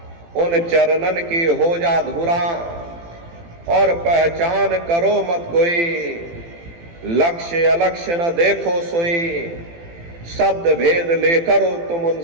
उन चरणन की हो जा धुरा, और पहचान करो मत कोई, लक्ष्य अलक्ष्य न देखो सोई, शब्द भेद लेकर तुम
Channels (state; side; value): late; left; 18 ms